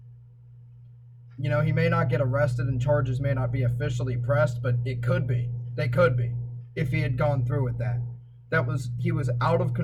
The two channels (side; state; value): both; identical; correlation 1.00